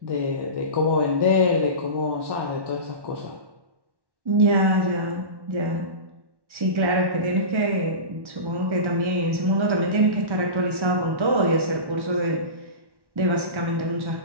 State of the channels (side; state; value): left; late; 1.1 ms